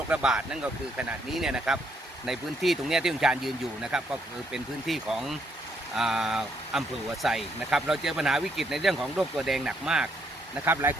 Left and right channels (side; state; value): both; normal; correlation 0.72